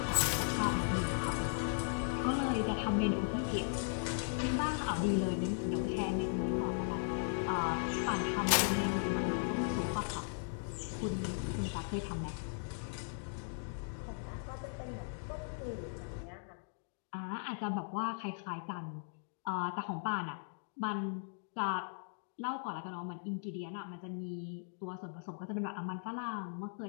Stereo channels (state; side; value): silent; right; digital silence